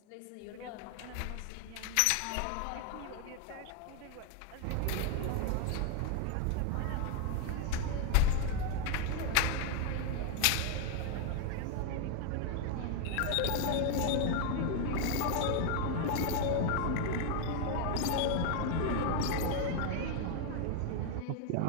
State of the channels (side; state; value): both; different; correlation 0.01